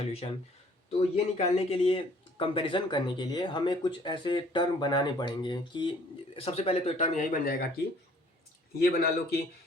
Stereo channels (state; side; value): normal; both; correlation 0.57